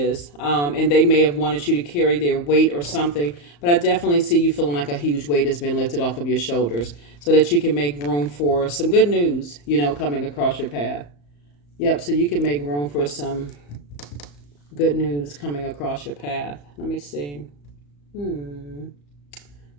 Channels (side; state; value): right; late; 35 ms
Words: and they may have wanted you to carry their weight or something. But I definitely see you feeling like a huge weight has been lifted off of your shoulders so that you can make room for some good news, you know, coming across your path. Yep, so you can make room for some good news coming across your path. Let me see.